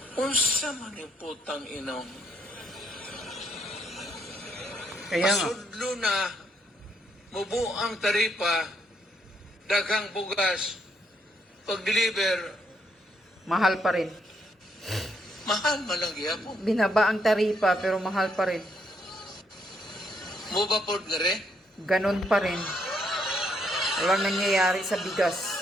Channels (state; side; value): normal; both; correlation 0.73